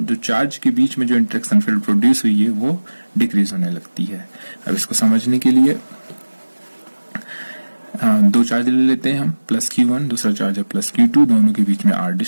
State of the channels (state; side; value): inverted; both; correlation -1.00